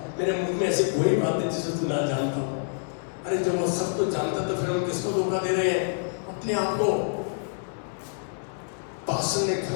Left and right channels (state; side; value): silent; right; digital silence